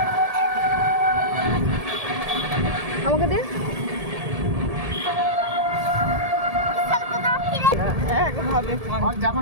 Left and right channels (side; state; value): left; late; 1.7 ms